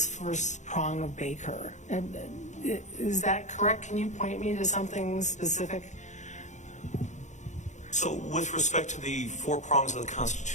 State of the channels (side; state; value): right; late; 0.35 ms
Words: first prong of Baker. And is that correct? Can you point me to something specific? So with respect to the four prongs of the